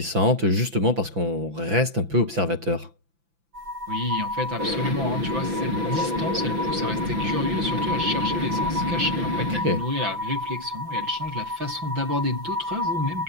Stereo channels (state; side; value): late; left; 5.9 ms